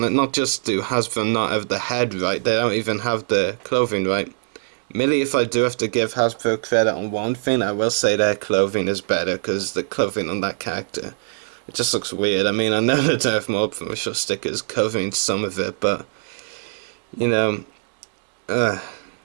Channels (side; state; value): left; silent; digital silence